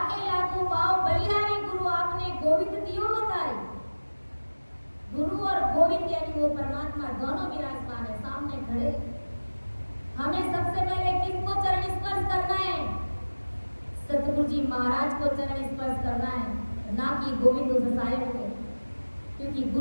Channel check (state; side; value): inverted; both; correlation -1.00